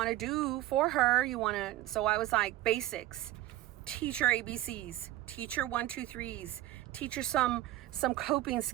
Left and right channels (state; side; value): quieter; left; 15.3 dB